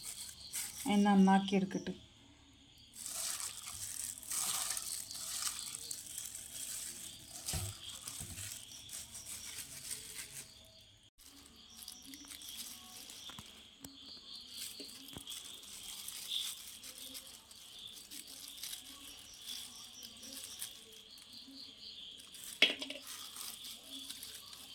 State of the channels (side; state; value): both; identical; correlation 1.00